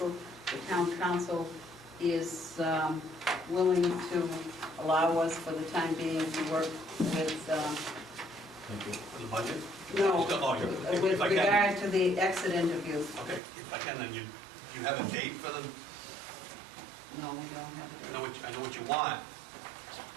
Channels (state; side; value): drops out; left; at 13.4 s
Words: The town council is willing to allow us for the time being to work with, Thank you. For the budget? no, Oh, if with I can. regard to the exit interviews. Okay, if I can, then you have a date for them? No, we don't have a I date. know what you want,